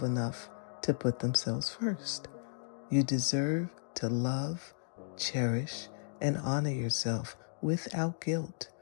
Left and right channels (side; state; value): right; silent; digital silence